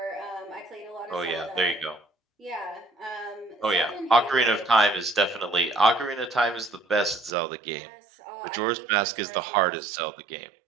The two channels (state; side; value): drops out; left; at 7.3 s